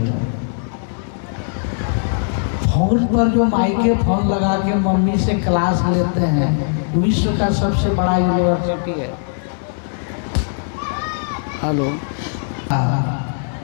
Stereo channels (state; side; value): silent; right; digital silence